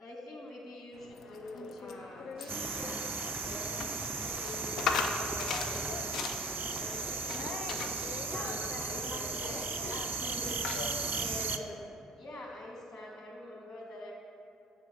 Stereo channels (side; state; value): both; normal; correlation 0.41